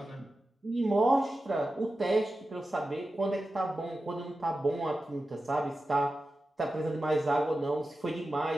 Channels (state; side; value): normal; both; correlation 0.92